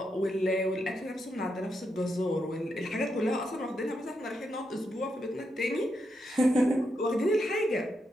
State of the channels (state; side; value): normal; both; correlation 0.83